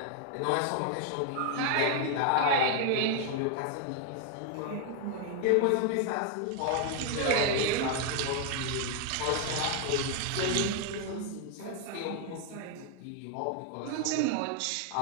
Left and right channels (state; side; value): different; both; correlation 0.01